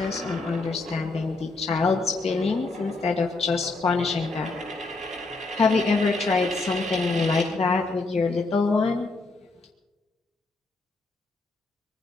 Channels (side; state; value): right; quieter; 3.5 dB